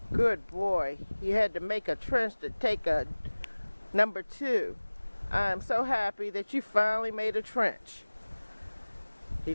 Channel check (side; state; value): both; inverted; correlation -1.00